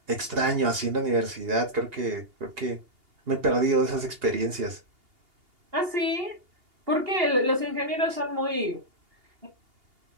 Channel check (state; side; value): late; left; 2.8 ms